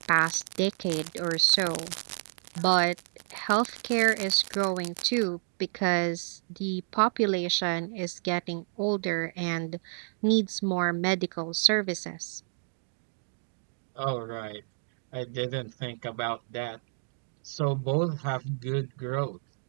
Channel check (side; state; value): left; silent; digital silence